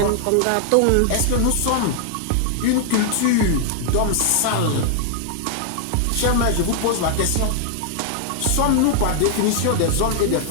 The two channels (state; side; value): different; both; correlation 0.00